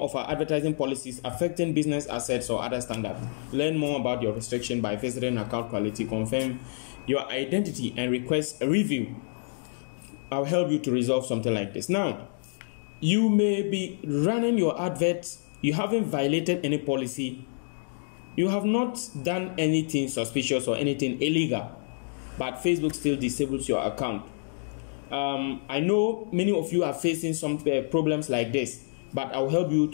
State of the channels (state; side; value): silent; right; digital silence